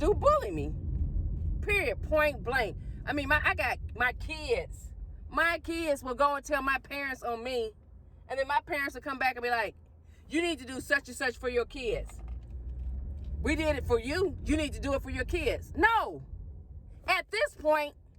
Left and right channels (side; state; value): both; identical; correlation 1.00